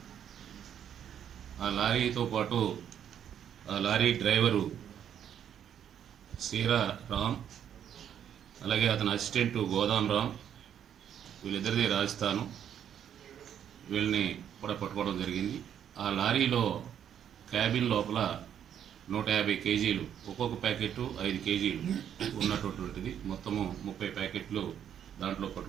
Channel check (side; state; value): left; quieter; 9.3 dB